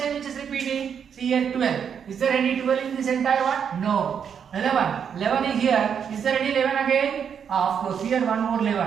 which is repeating? See here 12. Is there any 12 in this entire one? No. 11. 11 is here. Is there any 11 again? Of course, here one more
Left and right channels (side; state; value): left; quieter; 7.5 dB